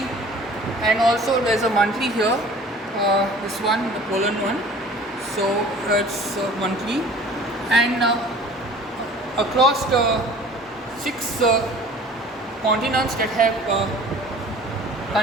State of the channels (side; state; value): both; normal; correlation 0.47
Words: and also there's a monthly here. This one, the Poland one. So it's monthly, and across the 6 continents that have